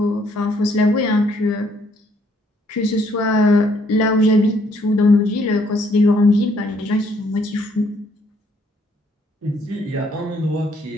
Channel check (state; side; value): normal; both; correlation 0.67